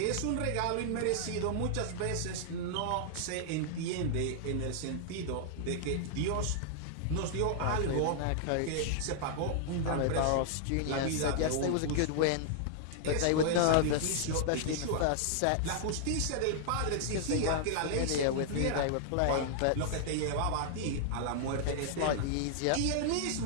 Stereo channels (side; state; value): both; different; correlation -0.01